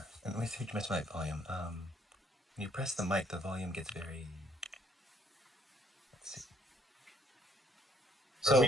And let me see if you missed my volume. When you press the mic, the volume gets very. Let's see. So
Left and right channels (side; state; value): both; normal; correlation 0.66